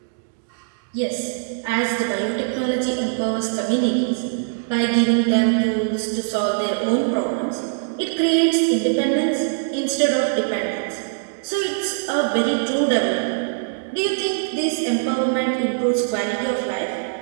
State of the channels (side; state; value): left; silent; digital silence